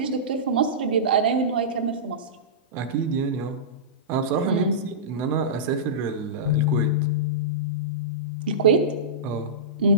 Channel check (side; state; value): both; normal; correlation -0.17